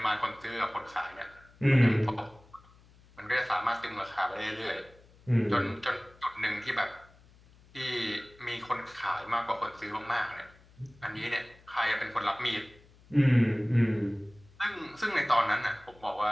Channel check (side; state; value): left; noise; hum, 27 dB below the sound